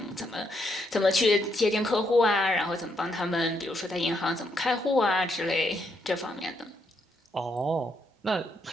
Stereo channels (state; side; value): normal; both; correlation 0.77